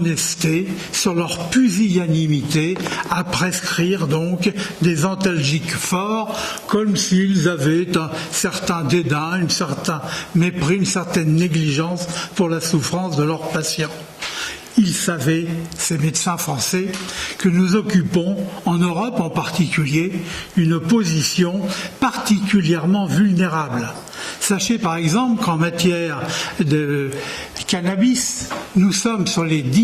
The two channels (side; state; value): both; identical; correlation 1.00